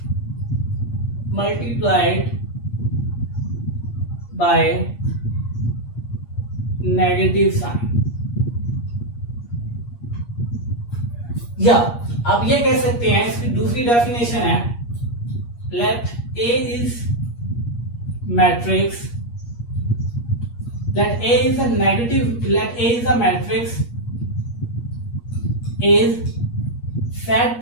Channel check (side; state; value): right; late; 8.5 ms